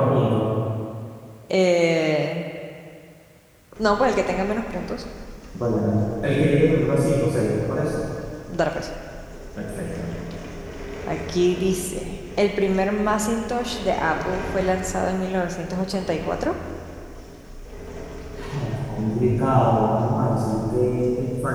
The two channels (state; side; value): identical; both; correlation 1.00